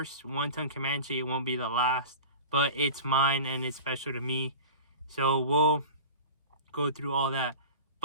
one-ton Comanche, it won't be the last, but it's mine and it's special to me. So we'll go through all that.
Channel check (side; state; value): both; inverted; correlation -0.35